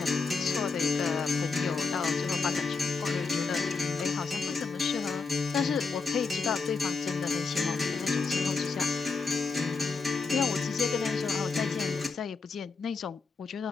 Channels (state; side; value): quieter; right; 4.7 dB